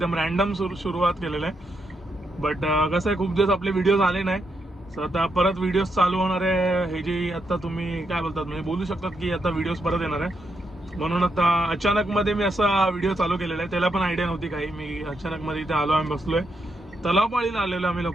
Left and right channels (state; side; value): normal; both; correlation 0.81